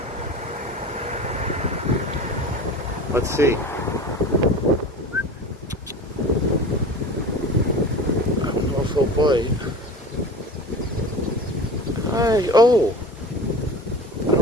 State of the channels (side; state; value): both; normal; correlation 0.35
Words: Let's see. I don't know if he'll bite. Hi. Oh. I